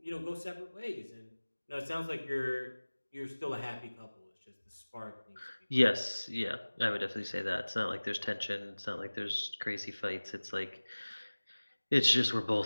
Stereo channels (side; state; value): both; inverted; correlation -1.00